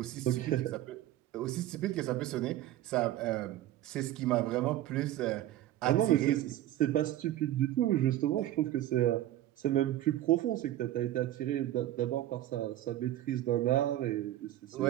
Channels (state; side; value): quieter; left; 13.8 dB